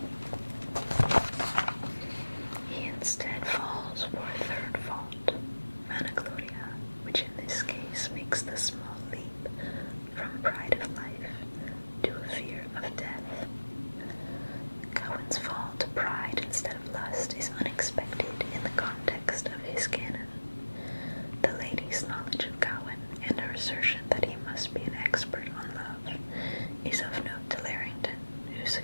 He instead falls for a third fault, vanagloria, which in this case makes the small leap from pride of life to a fear of death. Gawain's fall to pride instead of lust is unexpected in the context of his canon. The lady's knowledge of Gawain and her assertion that he must be an expert on love is of note to Larrington, who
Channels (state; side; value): inverted; both; correlation -1.00